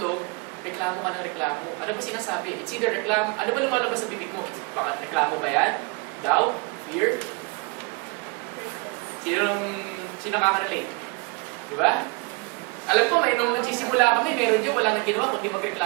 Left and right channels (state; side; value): quieter; left; 28.4 dB